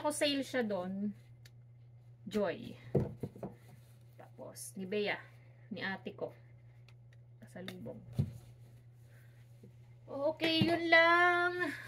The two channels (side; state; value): both; identical; correlation 1.00